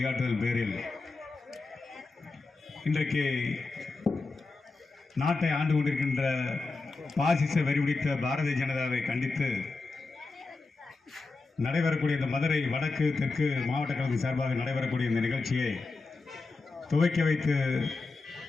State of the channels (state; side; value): quieter; right; 3.8 dB